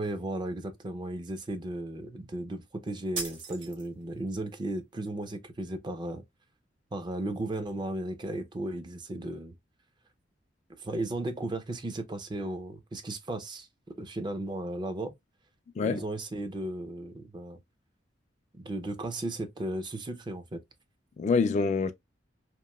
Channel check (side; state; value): both; normal; correlation 0.65